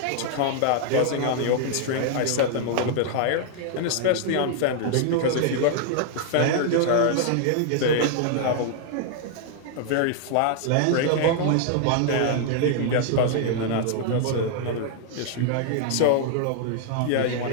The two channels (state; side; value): different; both; correlation 0.00